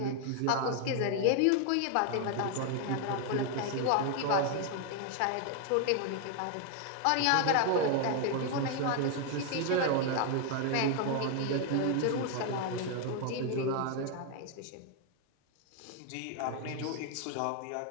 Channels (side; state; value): both; different; correlation 0.00